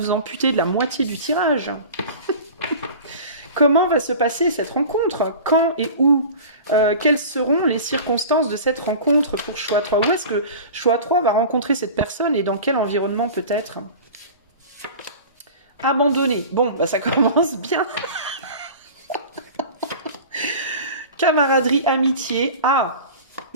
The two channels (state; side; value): inverted; both; correlation -0.37